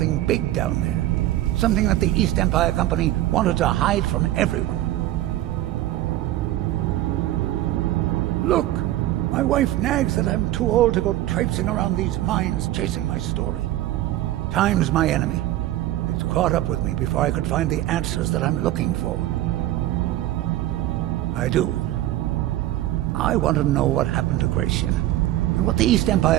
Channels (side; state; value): left; quieter; 14.6 dB